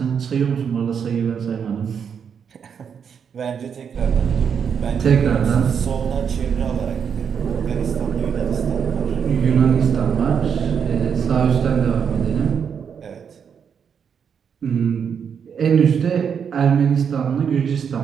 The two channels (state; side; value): quieter; left; 7.2 dB